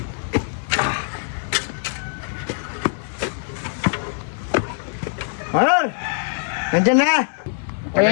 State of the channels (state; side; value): silent; right; 61 dB below the other